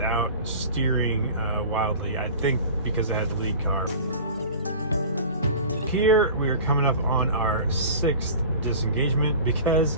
steering wildly. I think because it had the lead car. Here we are coming up on our 6th disengagement because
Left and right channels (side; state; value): both; inverted; correlation -0.38